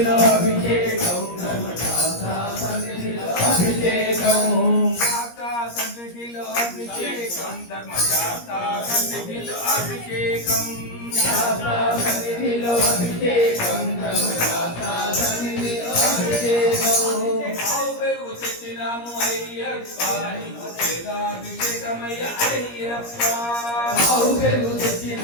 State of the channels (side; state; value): right; late; 17 ms